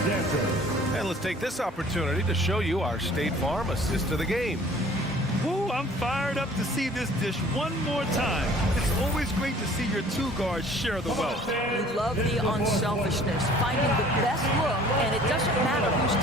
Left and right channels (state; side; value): normal; both; correlation 0.52